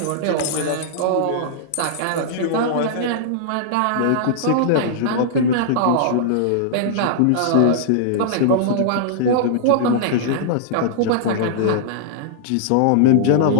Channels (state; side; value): different; both; correlation -0.02